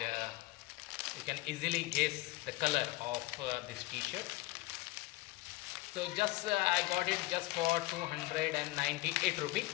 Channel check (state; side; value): quieter; right; 20.4 dB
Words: you can easily guess the color of this t-shirt. So just I got it just for 298 rupees